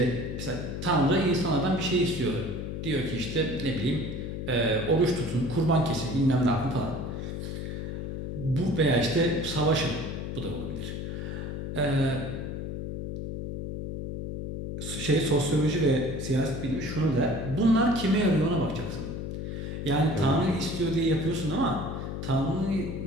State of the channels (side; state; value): left; noise; hum, 5 dB below the sound